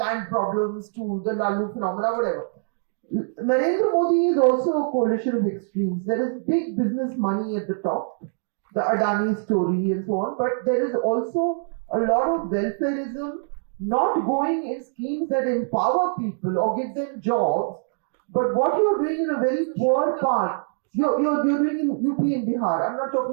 to the Lalu phenomena, whatever. Narendra Modi is also a coalition of extremes. There is big business money at the top, the Adani story and so on, but there is also a lot of welfareism, not going in schemes that empower people or give them jobs, but what you're doing in a very poor part, you're doing in UP and Bihar. I'm not talking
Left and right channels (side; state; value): left; silent; digital silence